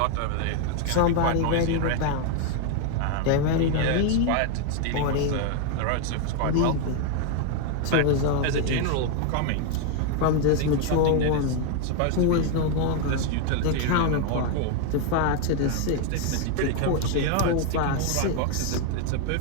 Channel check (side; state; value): both; different; correlation 0.01